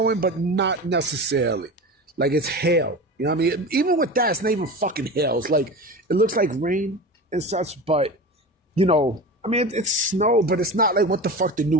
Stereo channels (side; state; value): both; normal; correlation 0.30